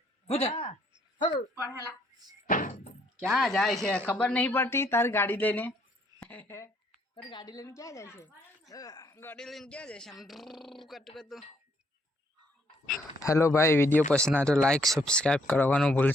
क्या जाए छे खबर नहीं पड़ती तार गाड़ी लेने पर गाड़ी लेने क्या जाए छे गाड़ी लेने क्या जाए हम कट कर दो हेलो भाई वीडियो पसंद आए तो लाइक सब्सक्राइब करवानो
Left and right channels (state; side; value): normal; both; correlation 0.68